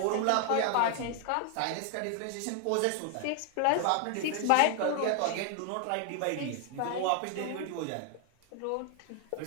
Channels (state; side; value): different; both; correlation 0.00